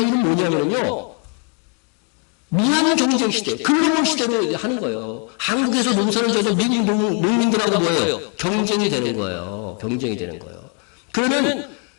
뭐냐면요, 무한 경쟁 시대, 글로벌 시대로 하는 거예요. 한국에서 농사를 져서 미국 농민들하고 뭐예요? 경쟁이 되는 거예요. 그러면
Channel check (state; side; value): quieter; right; 37.9 dB